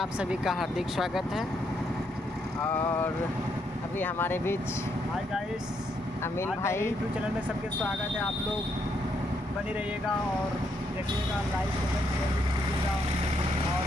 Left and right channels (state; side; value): normal; both; correlation 0.75